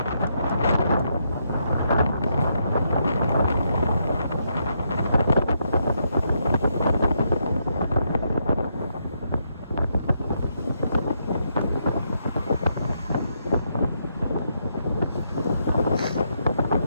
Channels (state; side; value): inverted; both; correlation -0.78